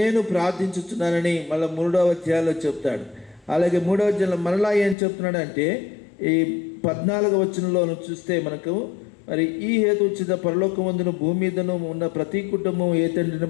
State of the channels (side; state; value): right; drops out; at 5.0 s